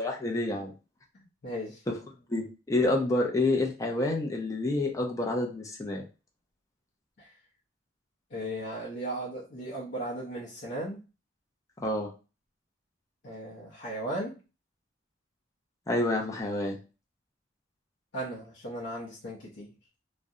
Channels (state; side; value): normal; both; correlation 0.53